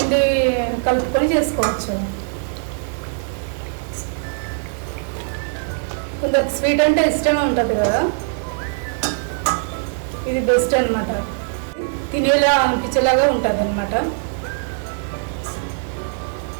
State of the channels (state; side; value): silent; left; 65 dB below the other